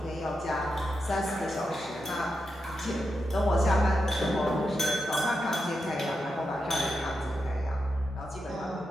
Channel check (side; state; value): both; normal; correlation 0.87